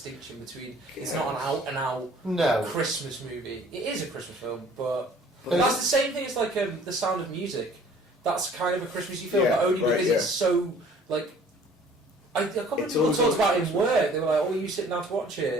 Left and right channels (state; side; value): normal; both; correlation 0.53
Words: between it's not an out and out No. Christmas movie. It is a Christmas film, but that's the same thing as like The Sound of Music. That's kind of a Christmassy film, Yeah, but only right, because yeah. it's so like. I can't remember It's people always talked about it like in work. They were like, "Oh, you sitting down to watch